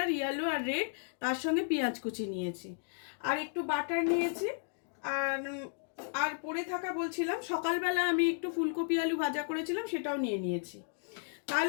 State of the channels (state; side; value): silent; right; digital silence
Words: ইয়েলো আর রেড। তার সঙ্গে পেঁয়াজ কুচি নিয়েছি, আর একটু বাটার নিয়েছি। আর আর পড়ে থাকা বলছিলাম, সকালবেলা আমি একটু ফুলকপি আলু ভাজা করেছিলাম, সেটাও নিয়ে নিয়েছি।